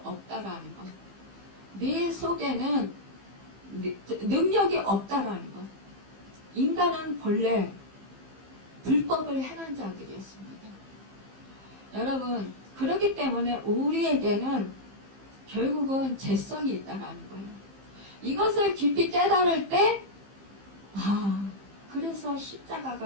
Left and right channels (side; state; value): left; late; 15 ms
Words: 것. 네 속에는 능력이 없다라는 것. 인간은 본래 불법을 행한 자들이었습니다. 여러분 그렇기 때문에 우리에게는 결국은 죄성이 있다라는 거예요. 이것을 깊이 깨달을 때 그래서